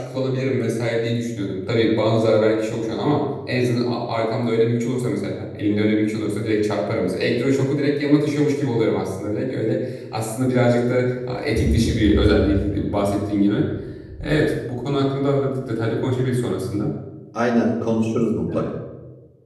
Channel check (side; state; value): both; identical; correlation 1.00